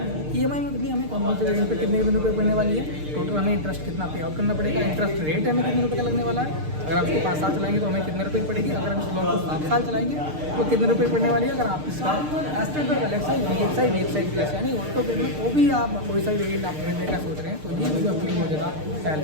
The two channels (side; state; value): left; late; 6.6 ms